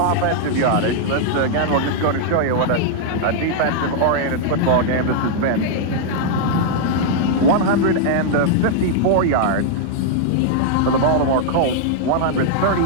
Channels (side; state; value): both; different; correlation -0.01